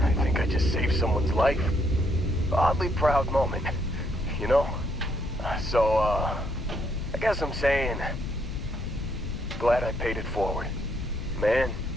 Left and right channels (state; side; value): noise; left; rumble, 8 dB below the sound